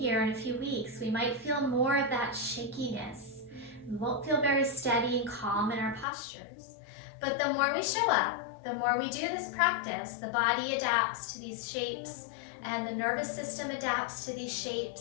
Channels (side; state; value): right; drops out; at 6.1 s